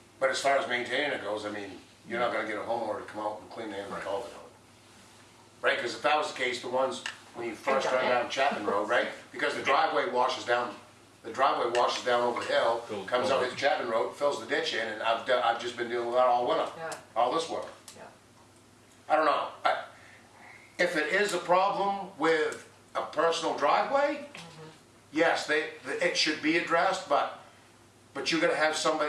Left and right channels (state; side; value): identical; both; correlation 1.00